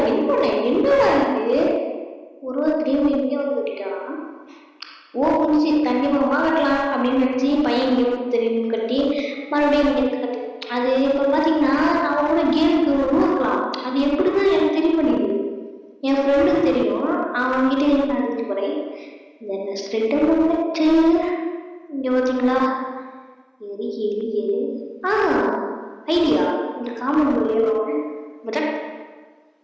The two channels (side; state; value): both; identical; correlation 1.00